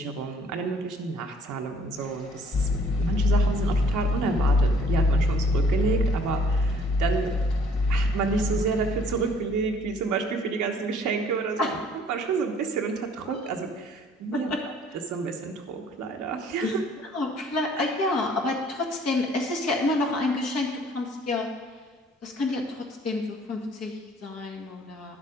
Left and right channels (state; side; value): normal; both; correlation 0.57